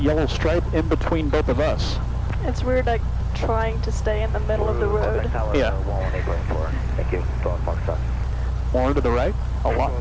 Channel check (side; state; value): both; identical; correlation 1.00